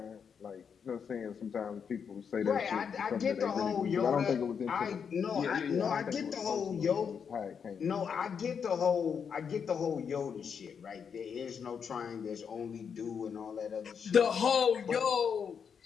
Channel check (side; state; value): right; quieter; 6.8 dB